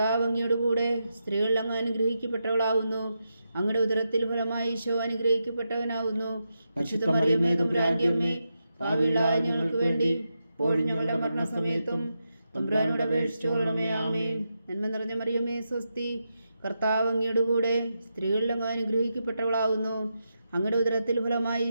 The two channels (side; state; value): both; inverted; correlation -0.86